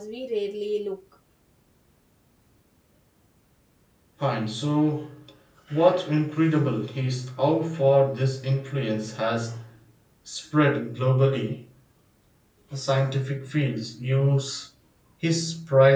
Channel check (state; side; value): identical; both; correlation 1.00